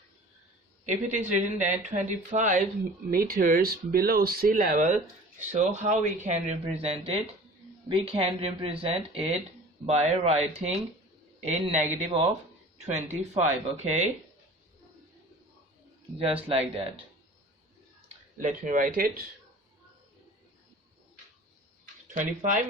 if it is written that 25 meters below sea level, so how we can represent it? We can represent it by writing a negative of 25. Okay, just like that. Let me write it. 25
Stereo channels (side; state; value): both; normal; correlation 0.43